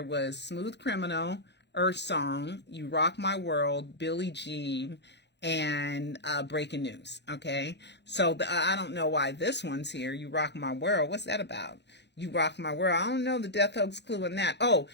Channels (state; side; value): late; right; 0.50 ms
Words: was Smooth Criminal, Earth Song, You Rock My World, Billie Jean, and Breaking News. Okay, so I don't know why this one's here, You Rock My World. What's that about? You Rock My World. I don't know the death hoax clue in that. Oh,